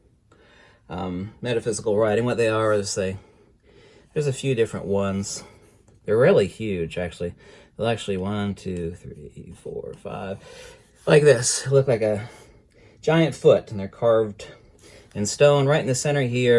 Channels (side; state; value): both; identical; correlation 1.00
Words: writing. What they are is there's a few different ones. They're really huge, actually. They'll actually 1, 2, 3, 4, 5, like this. They look like a giant foot, and they're carved in stone. Right in the center